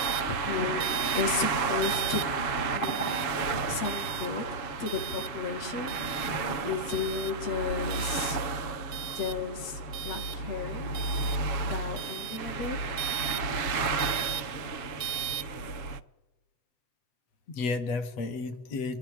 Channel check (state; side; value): late; right; 7.3 ms